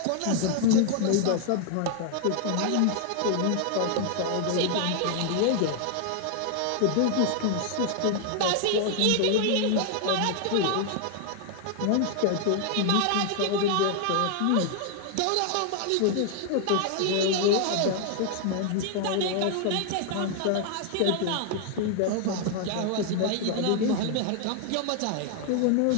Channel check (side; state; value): both; different; correlation 0.00